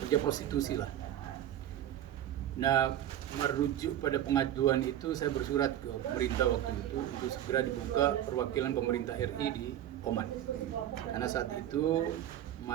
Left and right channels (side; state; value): left; quieter; 11.6 dB